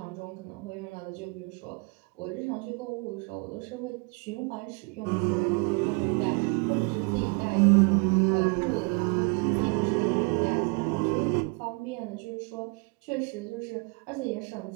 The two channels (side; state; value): left; quieter; 32.4 dB